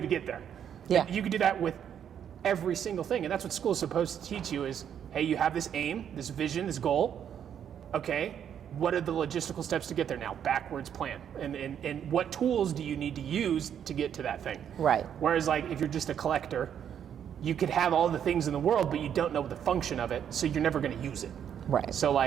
get there? Yeah. And you can do that with every single thing. And that's what school is supposed to teach you is, hey, you have this aim, this vision, this goal. Okay, what are the logistical steps to get there now? Backwards plan. And what tools do you need to use to get to that thing? Right. Whereas like if you're just a collector, you could have all the things in the world, but you don't know the function of it, so you're never going to use it. Right. So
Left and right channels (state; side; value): quieter; left; 8.9 dB